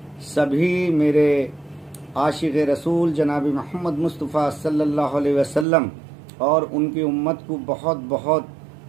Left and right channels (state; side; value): drops out; left; at 5.7 s